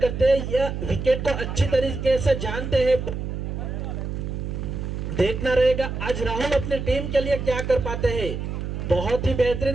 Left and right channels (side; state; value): right; noise; hum, 5 dB below the sound